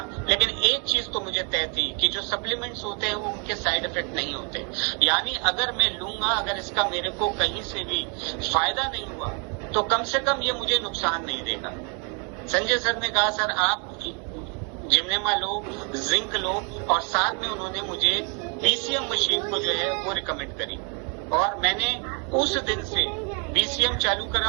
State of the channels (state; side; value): quieter; left; 36.7 dB